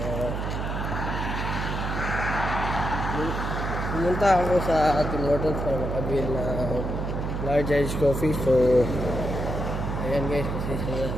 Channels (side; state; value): right; noise; hum, 3 dB below the sound